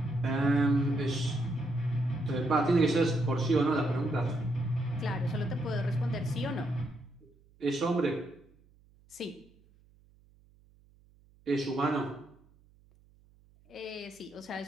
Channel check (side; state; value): right; noise; hum, 30 dB below the sound